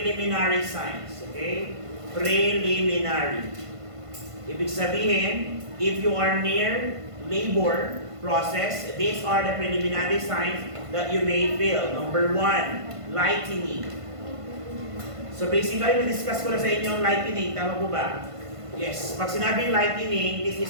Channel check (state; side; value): late; left; 1.5 ms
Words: signs. Okay? Preliminary. Ibig sabihin, if you are near labor process, these are the preliminary signs that you may feel. Number 1, lightening. So basically, na-discuss ko na sa inyo ang lightening. Tama po ba? Yes. Pag sinabing lightening, this is